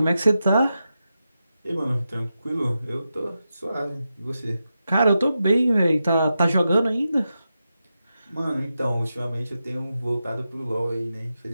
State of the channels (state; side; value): inverted; both; correlation -0.89